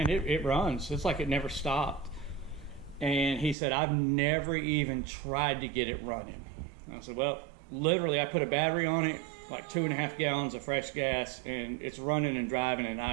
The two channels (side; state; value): left; drops out; at 3.6 s